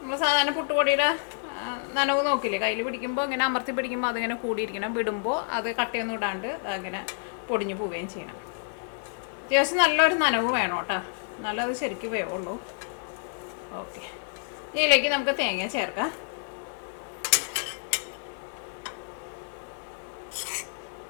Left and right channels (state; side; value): silent; right; digital silence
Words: നമ്മൾ സാധാരണ പുട്ടുപൊടിയുടെ നനവ് നോക്കില്ലേ, കയ്യിൽ പിടിക്കുമ്പോൾ ഇങ്ങനെ അമർത്തി പിടിക്കുമ്പോൾ അതിങ്ങനെ കൂടിയിരിക്കണം. വിടുമ്പോൾ അത് കട്ടയൊന്നും ഇടാണ്ട് അങ്ങനെ പൊടിഞ്ഞു പോവുകയും ചെയ്യണം. അത്യാവശ്യം നല്ലൊരു നനവ് വേണം കേട്ടോ, നല്ലത് ശരിക്കും വേവുള്ളൂ. ഓക്കെ, ഇതിലേക്ക് നമുക്ക് തേങ്ങ ചേർക്കാം.